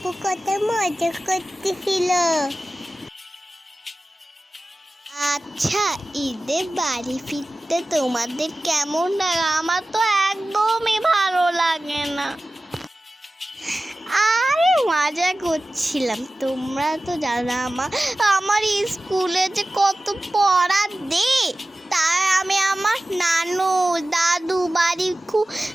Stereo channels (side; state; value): both; normal; correlation 0.96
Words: কত মজা করতেছিল। আচ্ছা, ঈদে বাড়ি ফিরতে তোমাদের কেমন লাগে? আমার তো একদমই ভালো লাগে না। আরে মজা করছিলাম, তোমরা তো জানো আমার স্কুলে যে কত পড়া দে। তাই আমি আমার নানু দাদু বাড়ি খুব